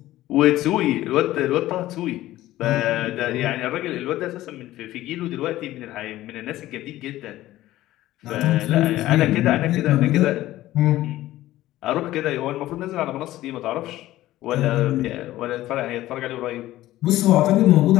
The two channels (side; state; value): right; quieter; 15.4 dB